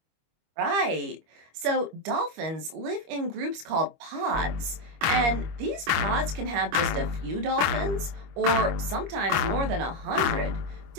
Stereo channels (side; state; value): left; late; 25 ms